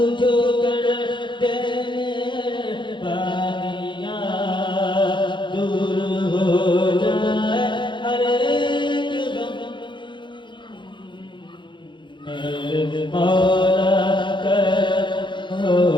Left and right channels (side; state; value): right; late; 0.23 ms